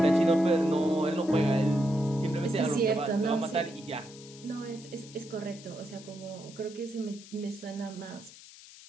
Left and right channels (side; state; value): left; noise; hiss, 19 dB below the sound